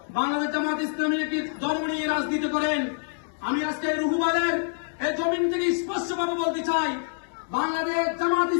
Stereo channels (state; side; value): silent; right; 61 dB below the other